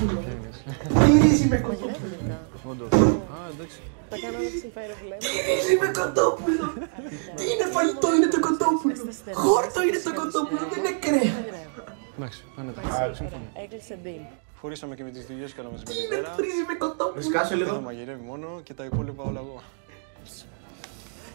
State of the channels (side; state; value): left; silent; digital silence